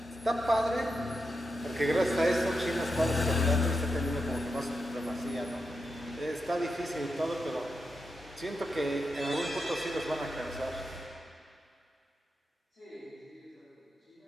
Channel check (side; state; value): both; normal; correlation 0.87